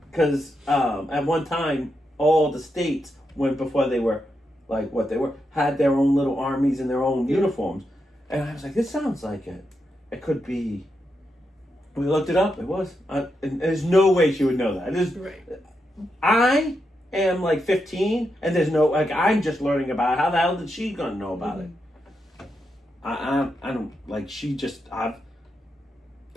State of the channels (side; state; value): both; normal; correlation 0.84